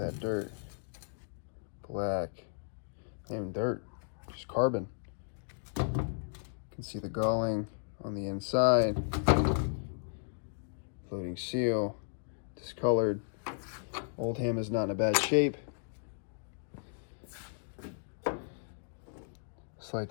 dirt. Black. Not even dirt, just carbon. You can see the galling on the inside. Floating seal. Discolored. Oldham is not in a bad shape. Slight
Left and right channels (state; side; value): silent; right; digital silence